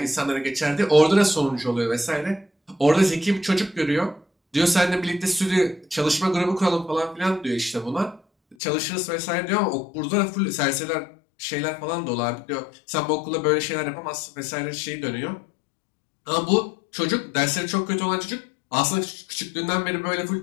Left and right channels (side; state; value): right; drops out; at 8.6 s